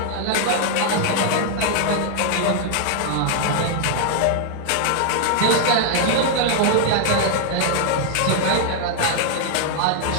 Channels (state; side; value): different; both; correlation 0.00